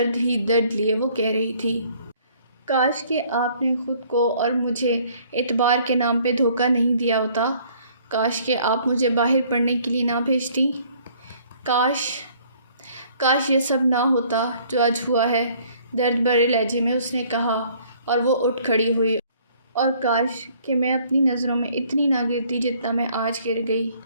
ہی درد لیے وہ کہہ رہی تھی۔ کاش کہ آپ نے خود کو اور مجھے اعتبار کے نام پہ دھوکہ نہیں دیا ہوتا۔ کاش کہ آپ مجھے باہر پڑھنے کے لیے نہ بھیجتی۔ کاش یہ سب نہ ہوتا جو آج ہوا ہے، درد بھرے لہجے میں اس نے کہا، اور وہ اٹھ کھڑی ہوئی۔ اور کاش کہ میں اپنی نظروں میں اتنی نہ گرتی جتنا میں آج گر گئی۔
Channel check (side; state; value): both; inverted; correlation -0.59